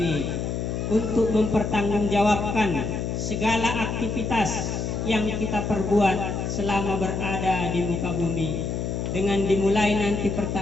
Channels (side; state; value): left; noise; hum, 2 dB below the sound